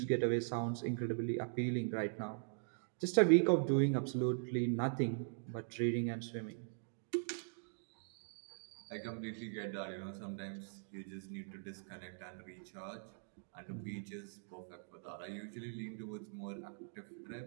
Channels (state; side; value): silent; left; digital silence